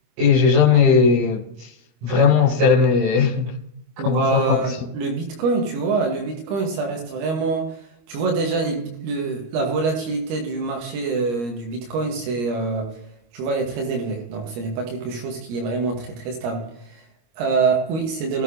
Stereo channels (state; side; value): late; left; 25 ms